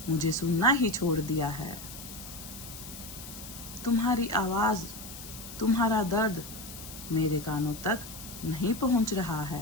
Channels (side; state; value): left; noise; hiss, 13 dB below the sound